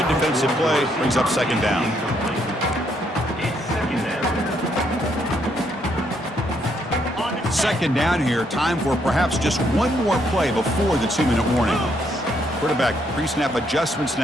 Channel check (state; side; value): normal; both; correlation 0.73